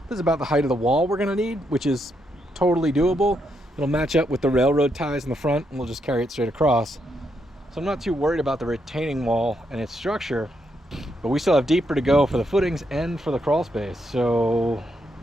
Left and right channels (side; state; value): both; normal; correlation 0.79